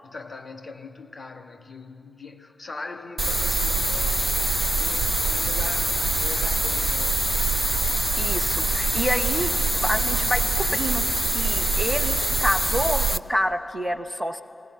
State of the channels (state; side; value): normal; both; correlation 0.88